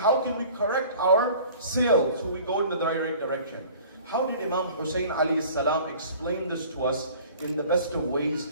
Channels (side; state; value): both; inverted; correlation -0.47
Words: can we correct our sail so we go in the right direction? How did Imam Hussain alayhi salam explain this to us in the best of ways,